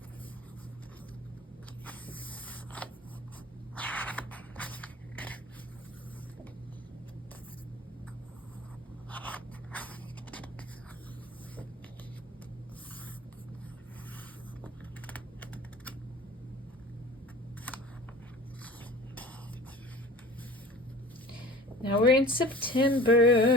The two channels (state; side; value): normal; both; correlation 0.42